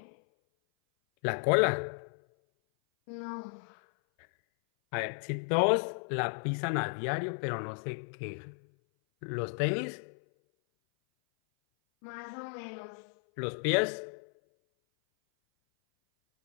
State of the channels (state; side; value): silent; right; 56 dB below the other